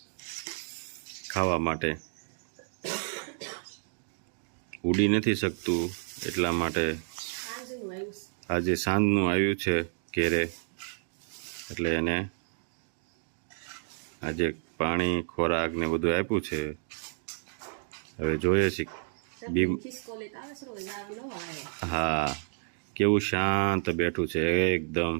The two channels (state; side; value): silent; left; 57 dB below the other